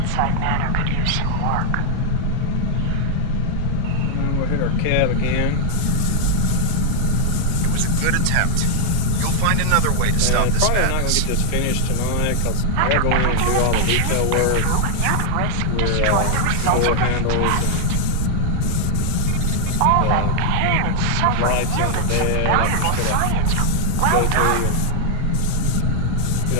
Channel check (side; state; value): both; different; correlation 0.00